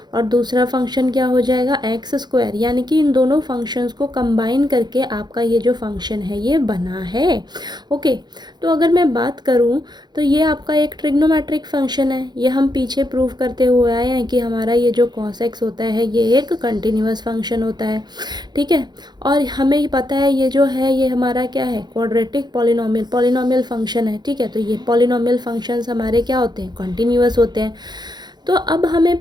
और दूसरा फंक्शन क्या हो जाएगा, एक्स स्क्वायर। यानी कि इन दोनों फंक्शंस को कंबाइन करके आपका ये जो फंक्शन है ये बना है। ओके, तो अगर मैं बात करूँ तो ये आपका एक ट्रिग्नोमेट्रिक फंक्शन है। ये हम पीछे प्रूव करते हुए आए हैं कि हमारा ये जो कॉस एक्स होता है ये एक कंटिन्यूअस फंक्शन होता है, ठीक है। और हमें पता है ये जो है ये हमारा क्या है, क्वाड्रेटिक पॉलिनोमियल फंक्शन है, ठीक है। तो ये पॉलिनोमियल फंक्शंस हमारे क्या होते हैं, कंटिन्यूअस होते हैं। तो अब हमें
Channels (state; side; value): late; left; 0.21 ms